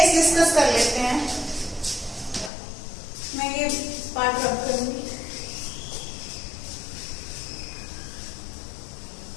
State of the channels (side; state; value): right; drops out; at 2.5 s